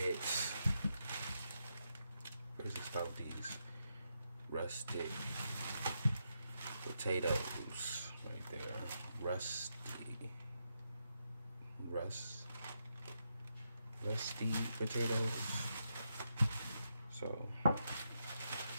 Where's the stuff? These rustic potatoes right there. Rust, rusty potatoes. So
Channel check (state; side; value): inverted; both; correlation -0.83